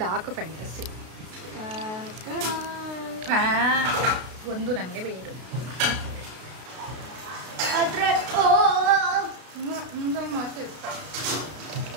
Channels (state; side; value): late; left; 32 ms